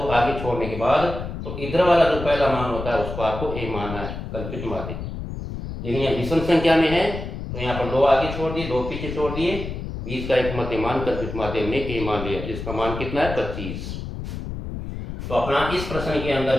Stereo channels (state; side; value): noise; left; rumble, 7 dB below the sound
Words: आगे छोड़ने के बाद, तो इधर वाला जो पहला मान होता है उसको आपको ए मानना है कल्पित माध्य। लेकिन यह विषम संख्या में है तो यहाँ पर 2 आगे छोड़ दिए 2 पीछे छोड़ दिए, बीच का एक मध्य मान कल्पित माध्य हमने ए मान लिया, जिसका मान कितना है 25। तो अपना इस प्रश्न के अंदर